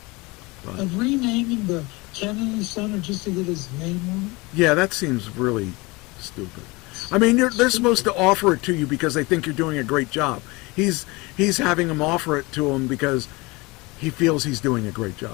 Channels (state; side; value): quieter; right; 24.4 dB